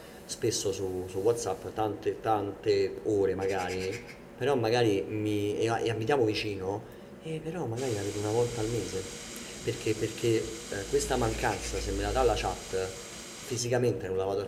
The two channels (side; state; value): both; identical; correlation 1.00